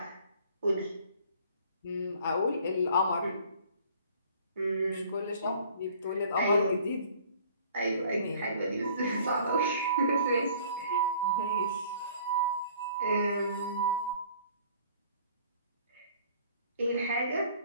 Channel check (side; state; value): both; inverted; correlation -0.53